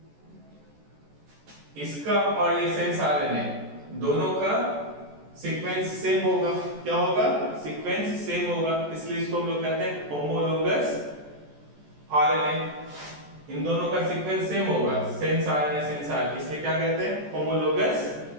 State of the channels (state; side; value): late; left; 14 ms